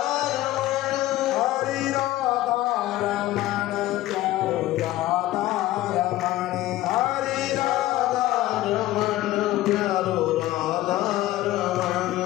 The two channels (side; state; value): right; quieter; 15.7 dB